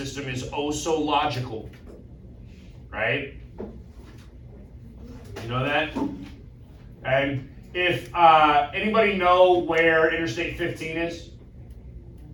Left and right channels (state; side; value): identical; both; correlation 1.00